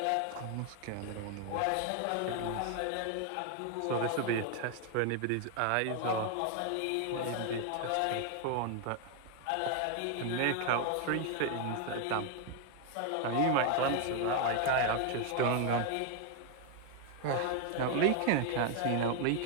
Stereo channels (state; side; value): different; both; correlation 0.01